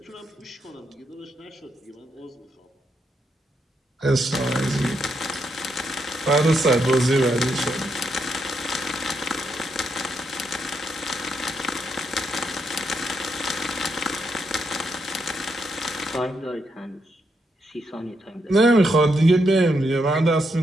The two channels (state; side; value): normal; both; correlation 0.80